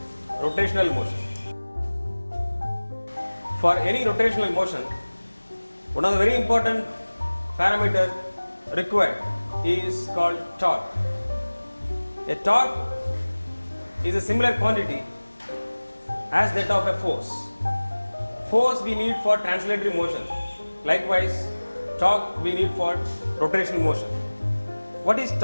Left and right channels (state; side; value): inverted; both; correlation -1.00